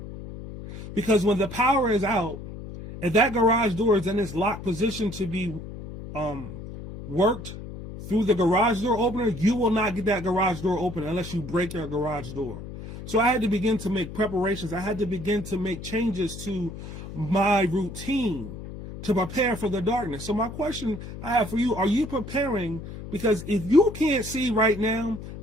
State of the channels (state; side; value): noise; left; hum, 11 dB below the sound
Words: Because when the power is out, and that garage door is in its locked position to be worked through the garage door opener, you will not get that garage door open unless you break your garage door. So I had to begin to make preparations. I had to begin to make changes to my routine to prepare for the darkness. So my question I have for you, are you preparing? Because if you can't see right now